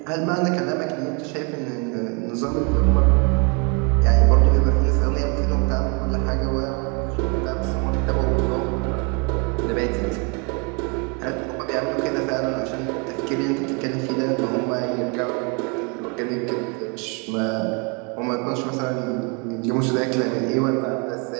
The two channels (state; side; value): quieter; left; 33.8 dB